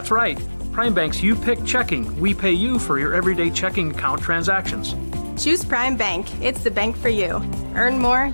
right, Prime Bank's You Pick checking. We pay you for your everyday checking account transactions. Choose Prime Bank. It's the bank for you. Earn more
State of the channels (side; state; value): both; inverted; correlation -1.00